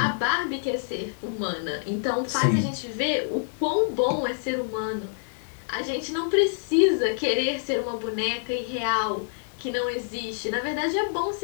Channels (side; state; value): right; silent; 59 dB below the other